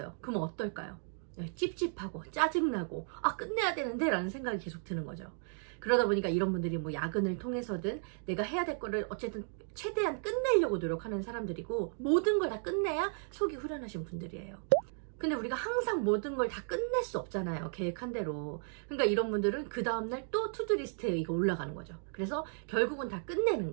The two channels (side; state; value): left; silent; 55 dB below the other